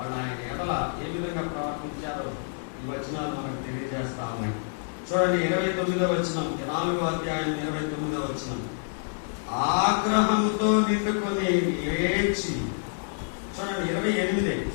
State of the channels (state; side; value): silent; right; digital silence